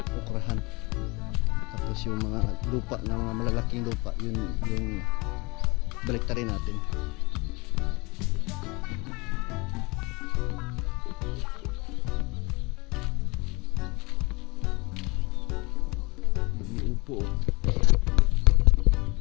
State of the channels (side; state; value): right; quieter; 26.0 dB